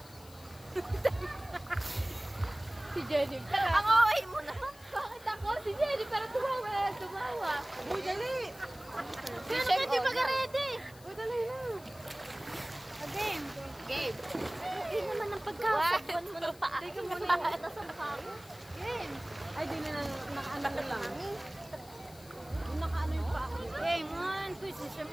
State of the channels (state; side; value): noise; left; hiss, 22 dB below the sound